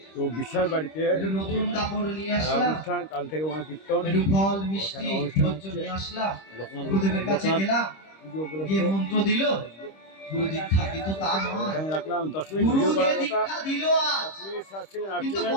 তো বিশ্বাস বাড়িতে নতুন কাপড় নিয়ে আসলাম, কাল থেকে কীর্তন, একটু ফল মিষ্টি নিয়ে আসলাম, গুরুদেবের কাছে গেলাম, পুজো গিয়ে উপলক্ষে মন্ত্র দিল, গুরু দীক্ষা, কিন্তু তা নয়। এখানে রাখলাম 10 মিনিট গুরু ভিডিও যে করার কথা, দীক্ষা দিল 10 মিনিট 7 সেকেন্ড 8 কিন্তু সেকেন্ড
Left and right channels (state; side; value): late; right; 26 ms